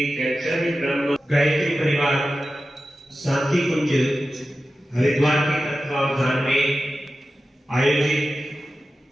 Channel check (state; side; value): normal; both; correlation 0.93